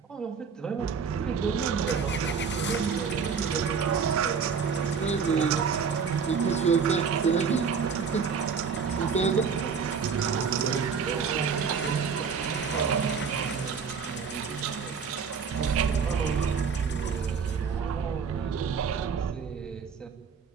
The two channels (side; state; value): left; quieter; 6.0 dB